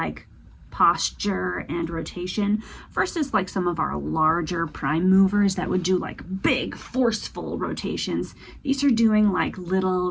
posture and rotation versus like some of our larger prime movers that would do like big forceful rotations. These are doing like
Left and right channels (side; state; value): both; identical; correlation 1.00